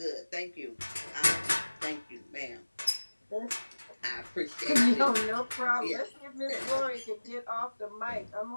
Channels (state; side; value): inverted; both; correlation -1.00